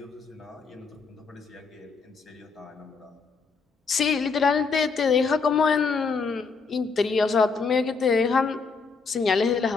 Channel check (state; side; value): quieter; right; 4.9 dB